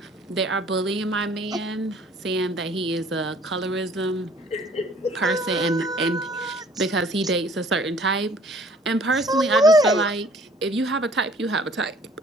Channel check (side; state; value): both; normal; correlation 0.55